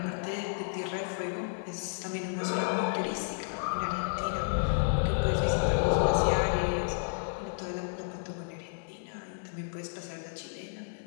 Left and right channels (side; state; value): right; silent; digital silence